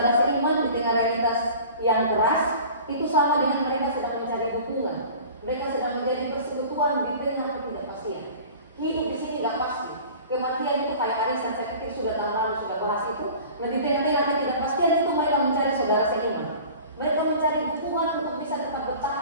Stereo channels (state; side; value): inverted; both; correlation -0.42